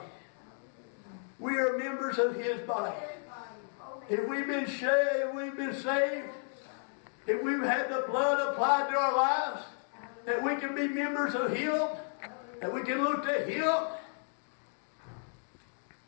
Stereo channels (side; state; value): right; silent; 56 dB below the other